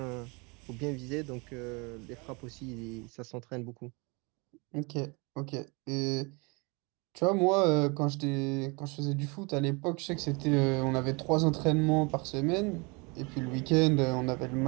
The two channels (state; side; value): quieter; left; 29.5 dB